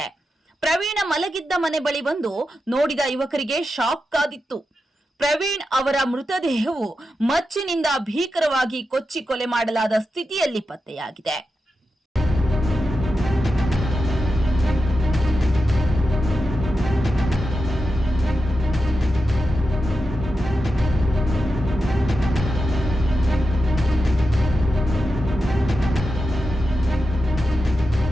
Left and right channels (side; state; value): both; normal; correlation 0.89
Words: ಪ್ರವೀಣ ಮಲಗಿದ್ದ ಮನೆ ಬಳಿ ಬಂದು ನೋಡಿದ ಯುವಕರಿಗೆ ಶಾಕ್ ಕಾದಿತ್ತು. ಪ್ರವೀಣ್ ಅವರ ಮೃತದೇಹವು ಮಚ್ಚಿನಿಂದ ಭೀಕರವಾಗಿ ಕೊಚ್ಚಿ ಕೊಲೆ ಮಾಡಲಾದ ಸ್ಥಿತಿಯಲ್ಲಿ ಪತ್ತೆಯಾಗಿದೆ.